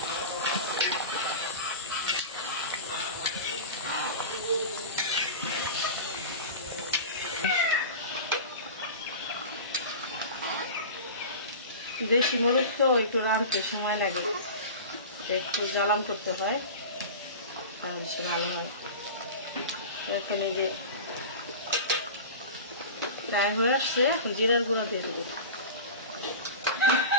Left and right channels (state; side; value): inverted; both; correlation -0.31